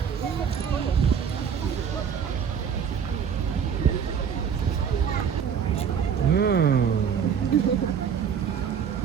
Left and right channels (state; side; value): quieter; left; 7.5 dB